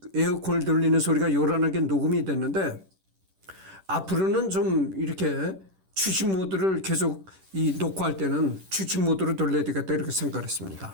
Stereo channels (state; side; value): late; left; 10 ms